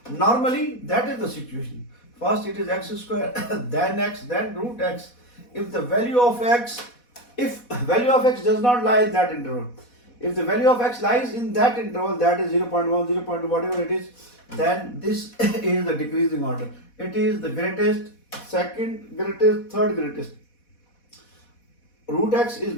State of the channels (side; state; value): right; late; 4.1 ms